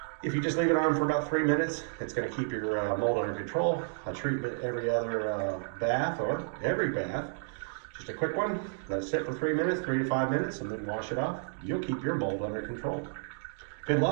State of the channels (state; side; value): silent; left; digital silence